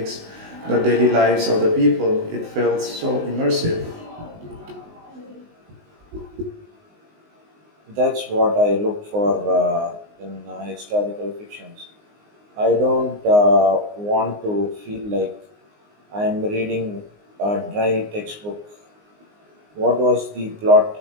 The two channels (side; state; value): left; late; 19 ms